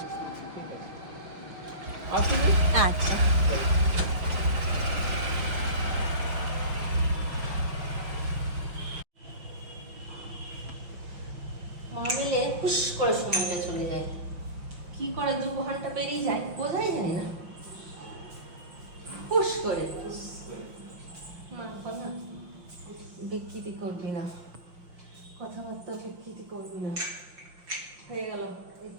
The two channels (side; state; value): left; late; 5.7 ms